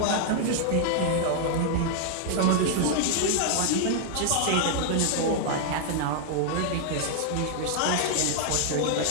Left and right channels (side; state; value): both; different; correlation 0.00